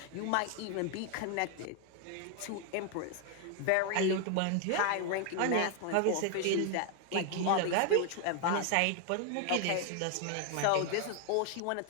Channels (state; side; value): different; both; correlation 0.00